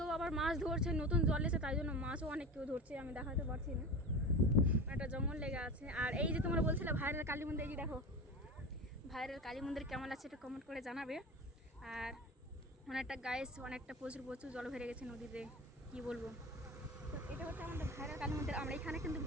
আবার মাছ ধরছে, নতুন জল এসে, তাই জন্য মাছও অনেক কেউ ধরছে। আমি দেখাতে পারছি না, একটা জঙ্গল লেগে আছে। আর এই যে তোমরা বলছিলে ভাইরাল কালী মন্দির, এই যে দেখো ভাইরাল কালী মন্দির কেমন আছে একটু কমেন্ট করে জানাবে। আর অনেকটা অনেকটা প্রচুর প্রচুর জল ভরে গেছে নদীতে, কি বলবো। তো এটা হচ্ছে আমাদের ভাইরাল কালী মন্দির। আমরা এখানে কিন্তু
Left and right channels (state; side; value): normal; both; correlation 0.30